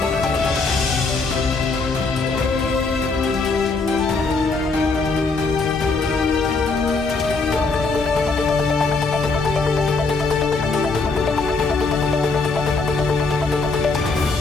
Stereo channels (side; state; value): right; quieter; 4.0 dB